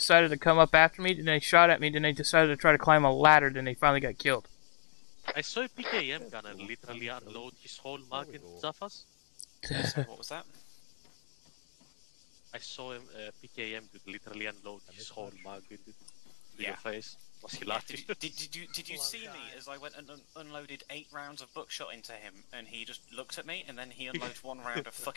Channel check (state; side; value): silent; right; 55 dB below the other